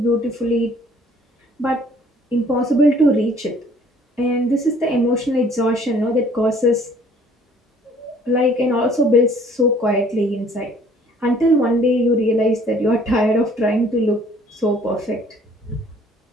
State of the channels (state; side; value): normal; both; correlation 0.57